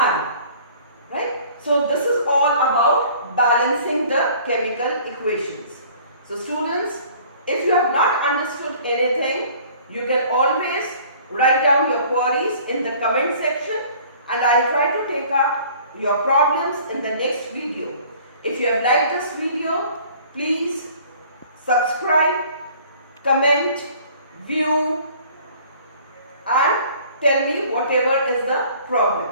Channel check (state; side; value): inverted; both; correlation -0.51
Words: Right? So this is all about balancing the chemical equations. So students, if you have not understood anything, you can always write down your queries in the comment section, and I will try to take up your problems in the next video. If you have liked this video, please subscribe, comment, view and tell me whatever is the problem.